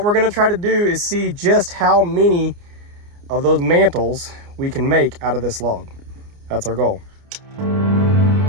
we're gonna try to do is see just how many of those mantles we can make out of this log. That's our goal.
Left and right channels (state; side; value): late; left; 29 ms